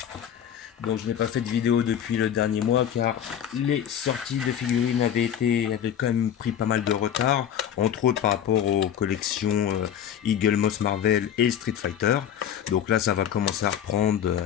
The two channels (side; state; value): right; quieter; 9.5 dB